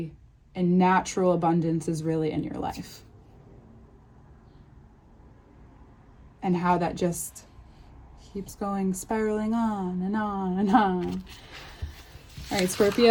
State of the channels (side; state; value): both; identical; correlation 1.00